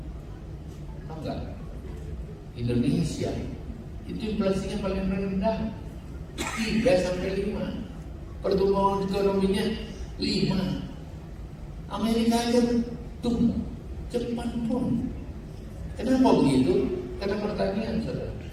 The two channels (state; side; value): identical; both; correlation 1.00